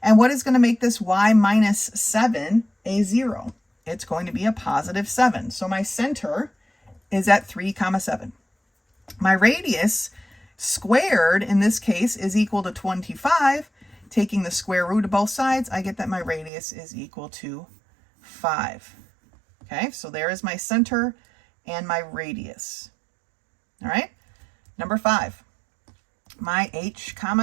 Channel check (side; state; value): left; drops out; at 16.5 s